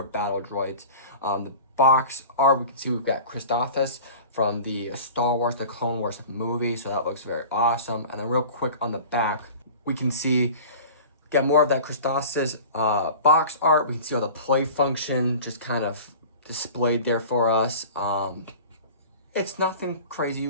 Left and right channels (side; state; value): both; inverted; correlation -0.39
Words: battle droids. The box art, we can see we've got Christophas from the Star Wars, the Clone Wars movie, so that looks very awesome. And then real quick on the back, we can see, get more of that Christophas box art. We can see all the play function just kind of displayed there for us. It's nothing crazy